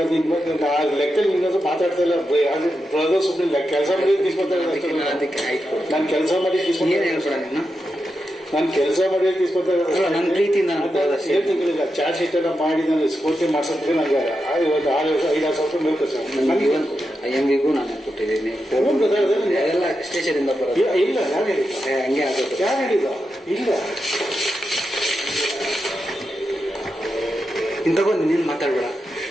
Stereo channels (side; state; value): both; normal; correlation 0.88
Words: ಲೆಕ್ಕದಲ್ಲಿ ನಿನ್ನದು ಮಾತಾಡ್ತಾ ಇಲ್ಲ ಬ್ರದರ್ ಸುಮ್ಮನೆ ಕೆಲಸ ಮಾಡಿ తీసుకొస్తారు ಅದಕ್ಕೆ ಆಯ್ತು ನಾನು ಕೆಲಸ ಮಾಡಿ ಏನು ಹೇಳ್ಬೇಡ ನೀನು ನಾನು ಕೆಲಸ ಮಾಡಿ తీసుకొస్తారు ನನ್ನ ಪ್ರೀತಿಯಿಂದ ಏನು ತಿಂಗಳಿಲ್ಲ ಚಾರ್ಜ್ ಶೀಟ್ ಎಲ್ಲ ಮಾಡಿ ನಾನು ಸ್ಫೂರ್ತಿ ಮಾಡ್ಸೋದಕ್ಕೆ ನನಗೆ ಇವತ್ತು 5-6 ಸಾವಿರ ರೂಪಾಯಿ ಬೇಕು ಸರ್ ನನಗೆ IMVಗೂ ನಾನು ಕೊಟ್ಟಿದ್ದೀನಿ ಎಲ್ಲ ಸ್ಟೇಷನಿಂದ ಬರೋದು ಇಲ್ಲ ಯಾರು ಹೇಳಿಲ್ಲ ಹಂಗೆ ಆಗೋದು ಯಾರು ಹೇಳಿಲ್ಲ ಇಲ್ಲ ಇನ್ನು ತಗೊಂಡು ನೀನು ಮಾತಾಡ್ಬೇಡ